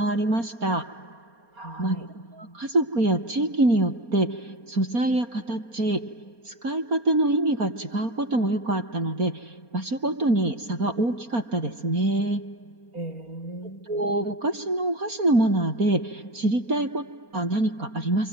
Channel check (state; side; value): late; left; 4.3 ms